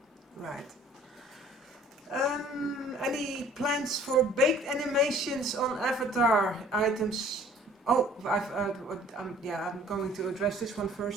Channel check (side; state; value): both; normal; correlation 0.53